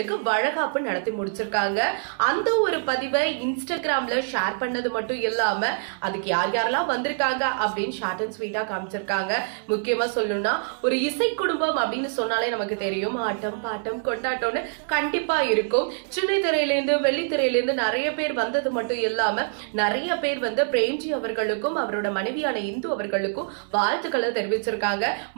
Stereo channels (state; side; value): silent; left; 61 dB below the other